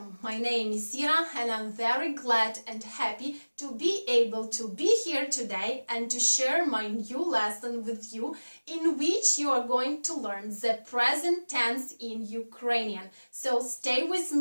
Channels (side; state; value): both; inverted; correlation -1.00